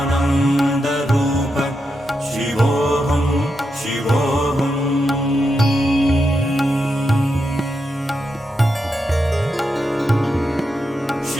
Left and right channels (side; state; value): both; normal; correlation 0.85